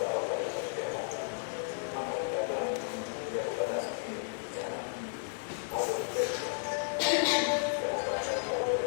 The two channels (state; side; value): silent; right; 55 dB below the other